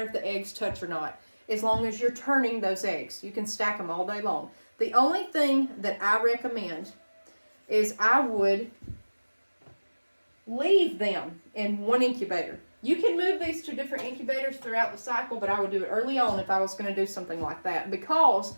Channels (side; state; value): both; inverted; correlation -1.00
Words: if the eggs touch or not, as long as you're turning those eggs. You can stack them all day long. The only thing that I recommend is I would leave them in one incubator. You can move these to different incubators throughout the cycle, but I would do it early on if I was going to do something like that, because